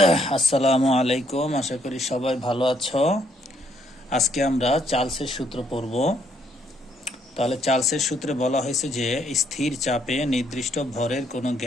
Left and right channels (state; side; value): normal; both; correlation 0.70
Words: আসসালামু আলাইকুম, আশা করি সবাই ভালো আছো। আজকে আমরা চার্লসের সূত্র পড়ব। তাহলে চার্লসের সূত্রে বলা হয়েছে যে স্থির চাপে নির্দিষ্ট ভরের কোনো